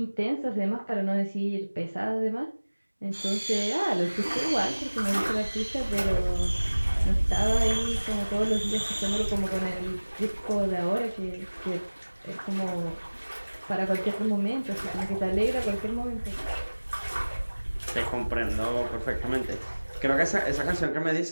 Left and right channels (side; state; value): both; inverted; correlation -1.00